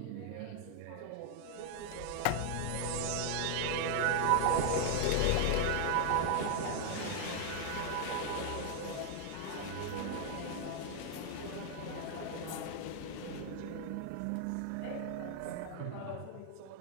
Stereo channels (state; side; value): different; both; correlation 0.00